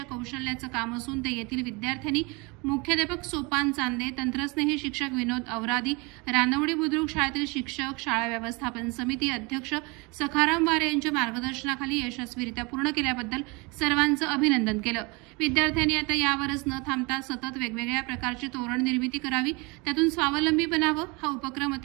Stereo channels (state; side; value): quieter; left; 27.8 dB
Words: कौशल्याचं काम असून ते येथील विद्यार्थ्यांनी मुख्याध्यापक सोपान चांदे, तंत्रस्नेही शिक्षक विनोद अवरादी, रानवडी बुद्रुक शाळेतील शिक्षक, शाळा व्यवस्थापन समिती अध्यक्ष सखाराम वारे यांच्या मार्गदर्शनाखाली यशस्वीरित्या पूर्ण केल्याबद्दल सर्वांचं अभिनंदन केलं। विद्यार्थ्यांनी आता यावरच न थांबता सतत वेगवेगळ्या प्रकारची तोरण निर्मिती करावी, त्यातून स्वावलंबी बनावं। हा उपक्रम